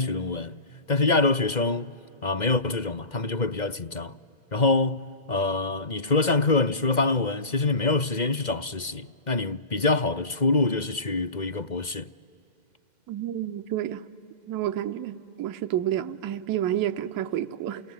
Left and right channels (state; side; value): late; right; 2.1 ms